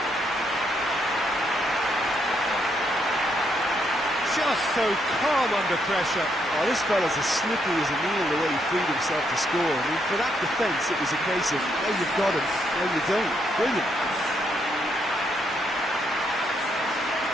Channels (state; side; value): normal; both; correlation 0.76